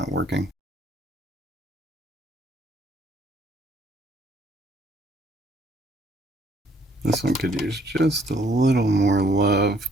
working. This one could use just a little more love,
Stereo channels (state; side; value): normal; both; correlation 0.65